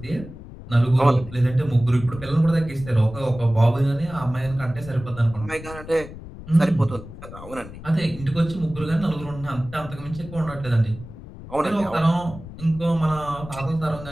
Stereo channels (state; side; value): noise; left; rumble, 14 dB below the sound